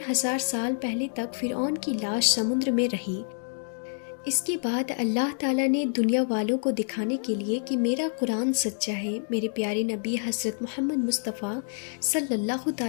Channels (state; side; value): silent; right; digital silence